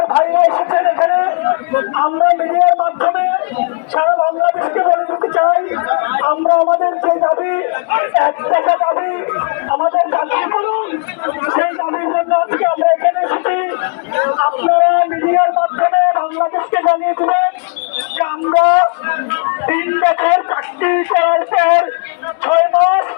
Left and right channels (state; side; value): quieter; right; 39.8 dB